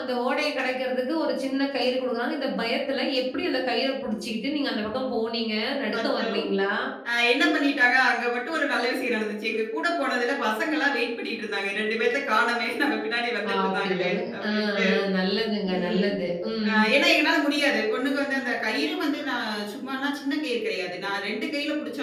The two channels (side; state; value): both; identical; correlation 1.00